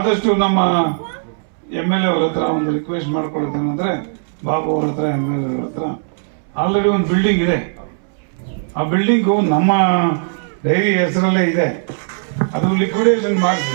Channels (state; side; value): silent; left; 67 dB below the other